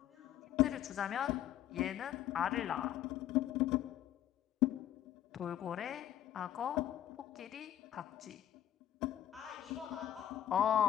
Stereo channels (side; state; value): right; quieter; 11.7 dB